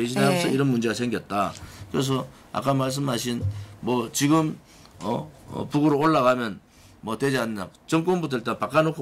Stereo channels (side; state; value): both; identical; correlation 1.00